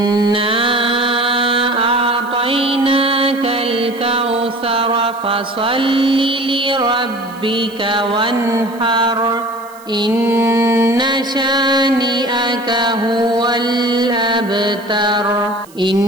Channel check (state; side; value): noise; right; hiss, 25 dB below the sound